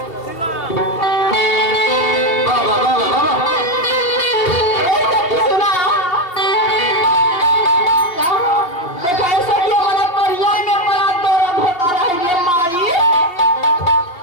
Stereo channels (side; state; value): right; late; 2.8 ms